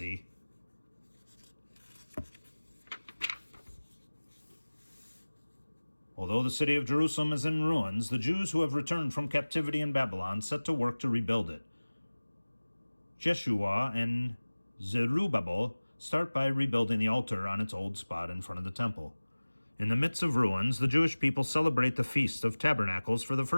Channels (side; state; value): both; inverted; correlation -1.00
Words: Although the city of Jerusalem is in ruins, the Jews who have returned from captivity in Babylon set to work to rebuild it. Jeshua and Zerubbabel start by rebuilding the altar on its old spot in front of the temple. In the midst of ruins, the Jewish people celebrate the Feast of Tabernacles for the